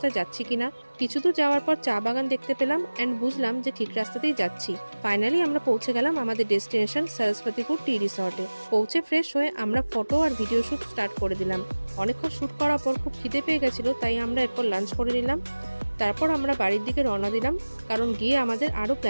যাচ্ছি কিনা। কিছু দূর যাওয়ার পর চা বাগান দেখতে পেলাম অ্যান্ড বুঝলাম যে ঠিক রাস্তাতেই যাচ্ছি। ফাইনালি আমরা পৌঁছে গেলাম আমাদের ডেস্টিনেশন সরস্বতীপুর টি রিসর্টে। পৌঁছে ফ্রেশ হয়ে আমরা ফটো আর ভিডিও শ্যুট স্টার্ট করে দিলাম। অনেকক্ষণ শ্যুট করার পর খুব খিদে পেয়ে গেছিলো, তাই আমরা এরপর লাঞ্চ করে নিলাম। তারপর আমরা বাড়ির দিকে রওনা দিলাম, কারণ গিয়ে আমাদের আরও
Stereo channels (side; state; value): both; inverted; correlation -1.00